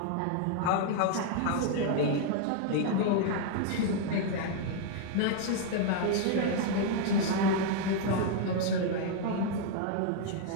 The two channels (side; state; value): both; different; correlation 0.00